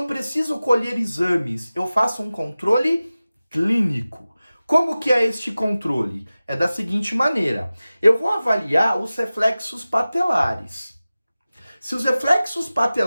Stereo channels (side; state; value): both; inverted; correlation -0.96